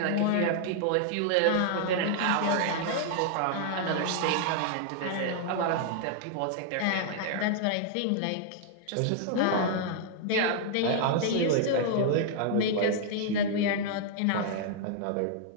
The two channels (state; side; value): different; both; correlation -0.01